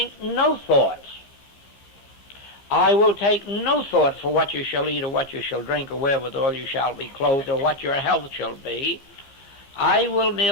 no thoughts. I will take no thought for what you shall eat or what you shall drink or wherewithal you shall be clothed or what your health shall be. I will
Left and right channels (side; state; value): right; late; 15 ms